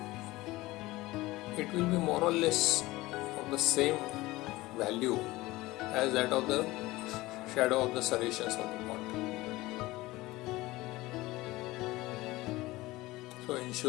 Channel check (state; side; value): quieter; right; 19.3 dB